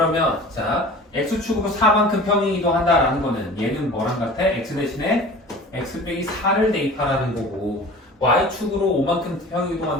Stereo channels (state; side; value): normal; both; correlation 0.41